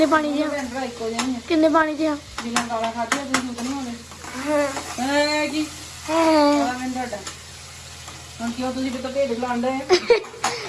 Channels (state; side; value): identical; both; correlation 1.00